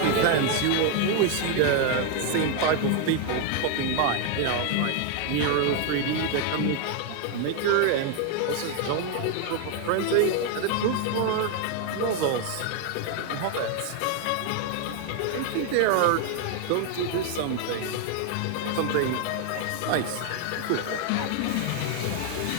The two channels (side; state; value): both; different; correlation 0.00